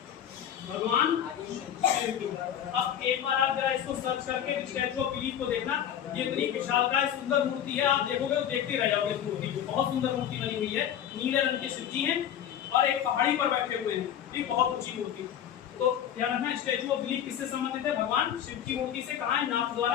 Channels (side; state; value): right; quieter; 9.9 dB